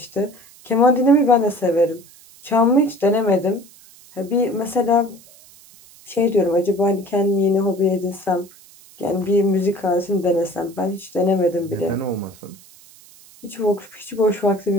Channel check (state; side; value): noise; right; hiss, 24 dB below the sound